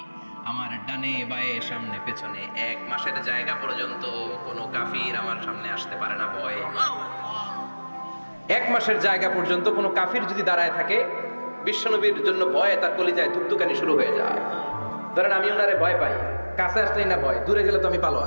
আমার ডানে বায়ে সামনে পেছনে 1 মাসের জায়গা পর্যন্ত কোনো কাফির আমার সামনে আসতে পারে না ভয়ে। 1 মাসের জায়গা পর্যন্ত কোনো কাফির যদি দাঁড়ায় থাকে, বিশ্বনবীর জন্য ভয়ে তার কলিজায় ধুকধুকানি শুরু হয়ে যায়। ধরেন আমি ওনারে ভয় পাই, কাছে আসলেই না ভয়, দূরে গেলে তো আমি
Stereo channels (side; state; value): both; inverted; correlation -1.00